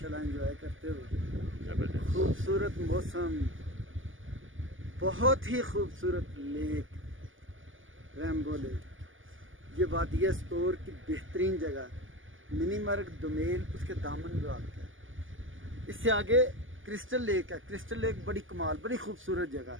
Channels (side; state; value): left; late; 0.58 ms